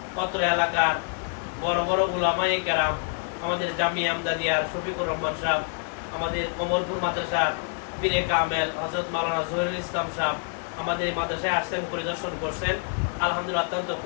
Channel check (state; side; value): quieter; right; 38.4 dB